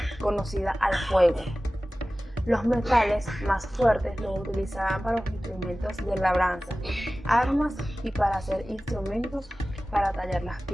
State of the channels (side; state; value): both; normal; correlation 0.97